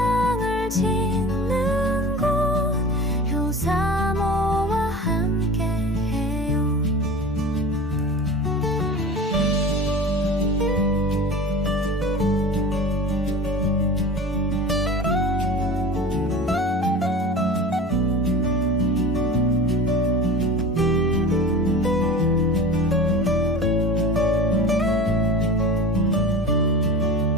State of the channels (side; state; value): both; normal; correlation 0.36